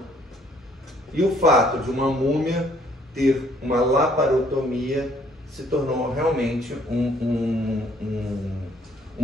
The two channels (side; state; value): both; normal; correlation 0.63